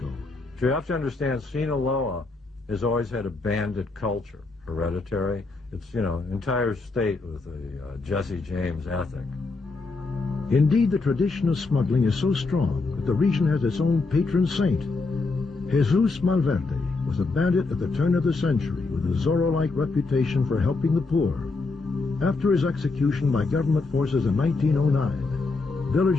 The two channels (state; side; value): quieter; right; 3.7 dB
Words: You have to understand, Sinaloa has always had a bandit culture, hereditary. It's, you know, entire state with a Jesse James ethic. Indeed, the tradition of smuggling is so strong that the region has its own patron saint. Jesus Malverde was a bandit at the turn of the century with a Zorro-like reputation for helping the poor. After his execution by government forces in 1909,